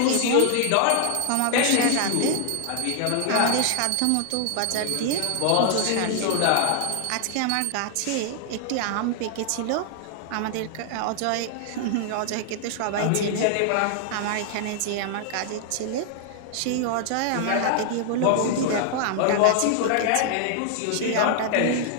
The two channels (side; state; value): both; different; correlation 0.00